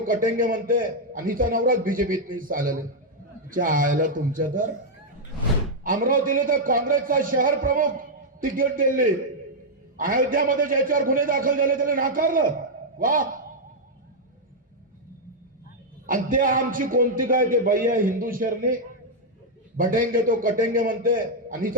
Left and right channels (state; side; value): normal; both; correlation -0.02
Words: कटेंगे म्हणते आणि हिचा नवराच बीजेपीत नाही चालले आयला तुमच्या तर अमरावतीला तर काँग्रेसचा शहर प्रमुख तिकीट दिले अयोध्यामध्ये ज्याच्यावर गुन्हे दाखल झाले त्याला नाकारलं वा आणि ते आमची कोणती काय ते बाई आहे हिंदू शरणी बटेंगे तो कटेंगे म्हणते आणि